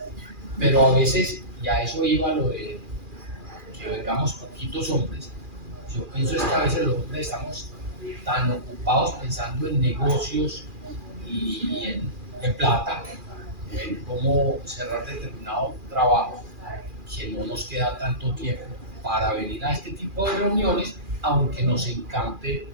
Pero a veces, y a eso iba lo de que vengamos poquitos hombres, yo pienso es que a veces los hombres estamos tan ocupados pensando en negocios y en plata, en cómo cerrar determinado trabajo, que no nos queda tanto tiempo para venir a este tipo de reuniones, aunque nos encante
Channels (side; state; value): left; late; 2.4 ms